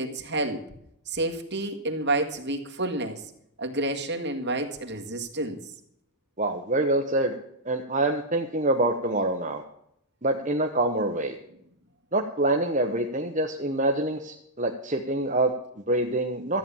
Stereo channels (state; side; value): normal; both; correlation -0.11